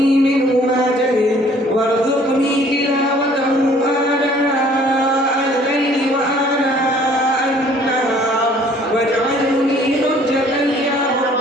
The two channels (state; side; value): normal; both; correlation 0.56